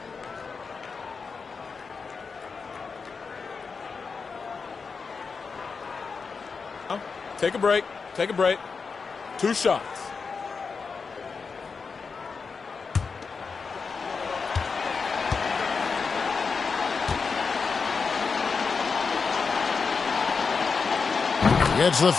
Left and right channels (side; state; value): right; quieter; 5.1 dB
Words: Take a break. Take a break. 2 shots. Gets the